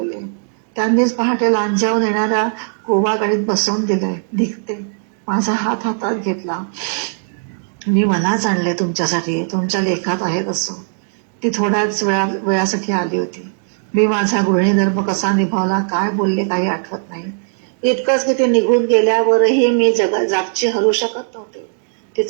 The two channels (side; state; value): left; silent; digital silence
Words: त्यांनीच पहाटे लांजावून येणाऱ्या गोवा गाडीत बसवून दिलंय. निघते. माझा हात हातात घेतला. मी मलाच आणले तुमच्यासाठी, तुमच्या लेखात आहे तसं. ती थोड्याच वेळासाठी आली होती. मी माझा गृहिणी धर्म कसा निभावला, काय बोलले काही आठवत नाही. इतकंच की ती निघून गेल्यावरही मी जागची हरू शकत नव्हते.